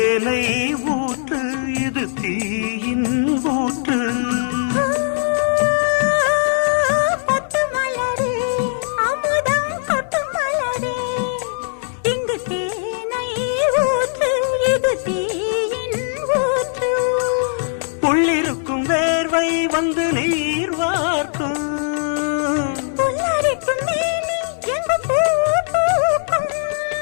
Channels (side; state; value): right; silent; 65 dB below the other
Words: ஊற்று, இது தீயின் ஊற்று. உள்ளிருக்கும் வேர்வை வந்து நீர் வார்க்கும்,